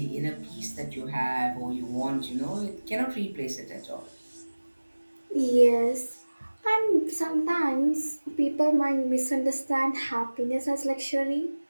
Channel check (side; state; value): both; inverted; correlation -1.00